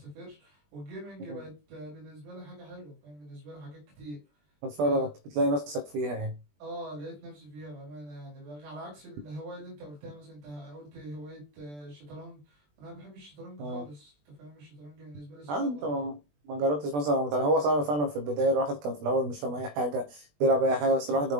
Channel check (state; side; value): late; left; 20 ms